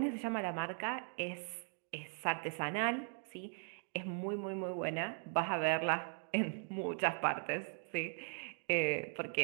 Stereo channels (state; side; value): silent; left; 52 dB below the other